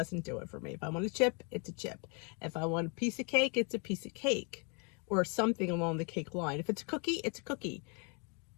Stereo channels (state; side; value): quieter; right; 35.8 dB